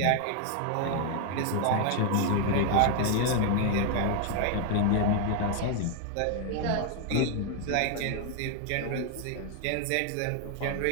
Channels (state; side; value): different; both; correlation 0.00